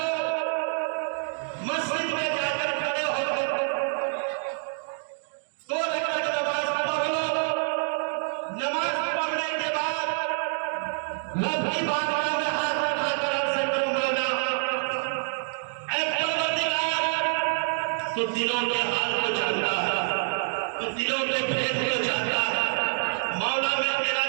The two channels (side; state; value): left; silent; digital silence